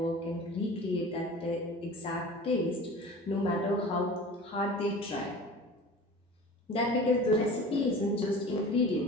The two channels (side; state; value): both; normal; correlation 0.39